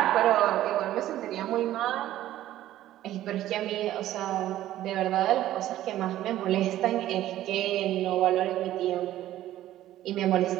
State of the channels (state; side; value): quieter; left; 13.6 dB